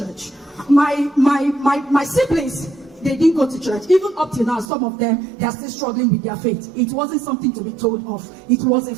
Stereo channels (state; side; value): drops out; left; at 4.7 s